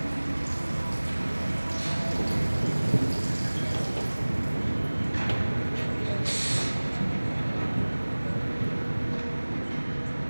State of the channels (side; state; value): both; inverted; correlation -1.00